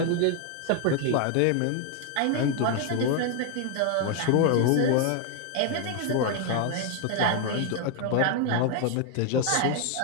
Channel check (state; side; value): different; both; correlation 0.01